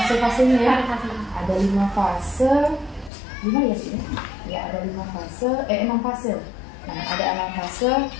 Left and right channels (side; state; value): right; drops out; at 3.1 s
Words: ya. Ada 5 fase. 5 ya sih? Ya, ada 5 fase, 6 fase. Nah, ada 6 fase